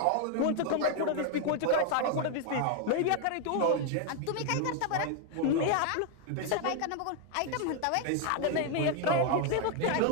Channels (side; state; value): both; different; correlation 0.00